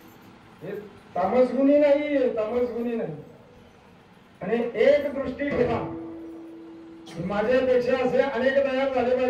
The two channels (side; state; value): both; identical; correlation 1.00